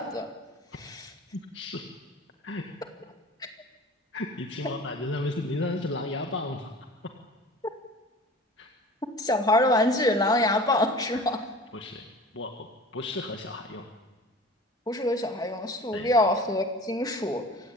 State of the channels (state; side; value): normal; both; correlation 0.41